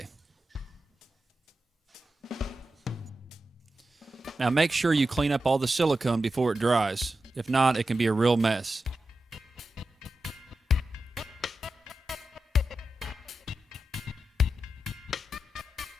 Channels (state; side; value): normal; both; correlation 0.91